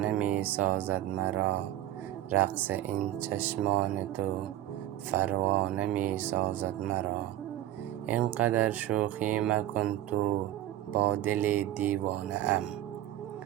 می سازد مرا. رقص این چشمان تو پروانه می سازد مرا. اینقدر شوخی مکن تو با دل دیوانه ام.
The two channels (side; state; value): left; quieter; 13.4 dB